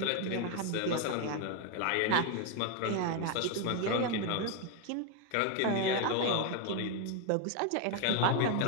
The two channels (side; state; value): both; different; correlation 0.01